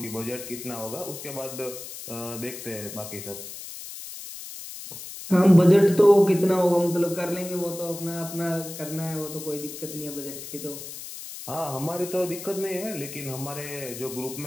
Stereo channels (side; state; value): left; noise; hiss, 11 dB below the sound